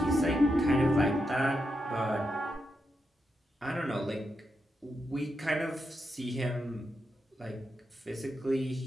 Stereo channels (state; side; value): normal; both; correlation 0.85